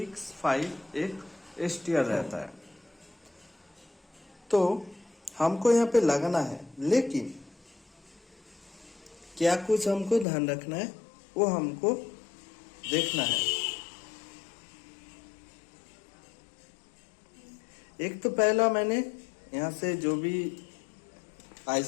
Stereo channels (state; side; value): drops out; right; at 10.2 s